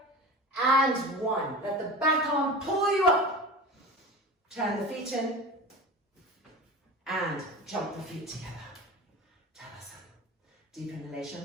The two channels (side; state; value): both; normal; correlation 0.32